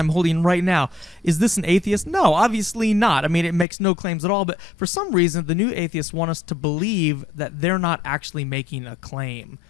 holding right now, is this an atheist? No, obviously not. I mean, it makes no claims at all. But for some reason, the new atheists want us to believe that they're not actually making a claim.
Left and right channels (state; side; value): drops out; right; at 3.7 s